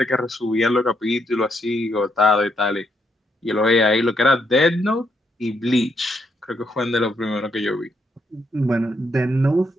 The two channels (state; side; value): normal; both; correlation 0.76